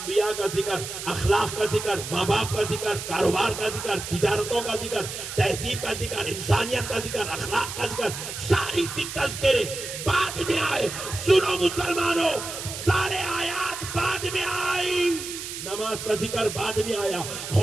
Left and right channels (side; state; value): right; noise; hiss, 8 dB below the sound